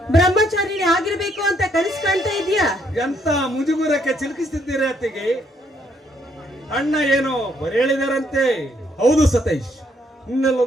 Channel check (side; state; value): both; normal; correlation 0.71